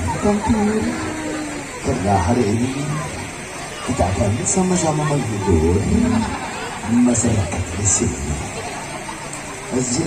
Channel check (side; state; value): both; identical; correlation 1.00